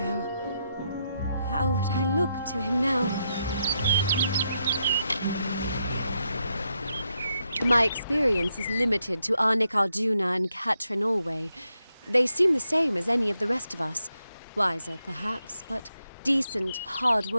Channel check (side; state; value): both; inverted; correlation -0.82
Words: How would I look to him now? My experience is limited to Arnik Arjuna and Katrin Allway. They seem the same as any of the rest of us. Wiser, perhaps, but decent,